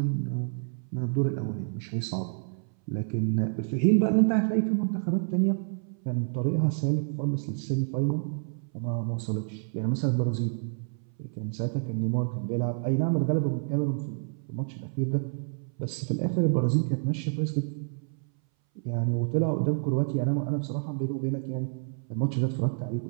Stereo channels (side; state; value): left; silent; 59 dB below the other